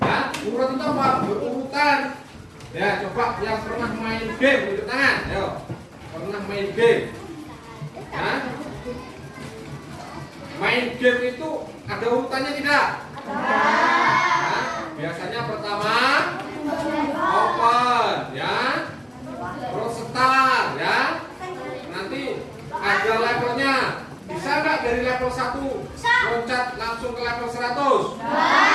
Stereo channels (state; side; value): identical; both; correlation 1.00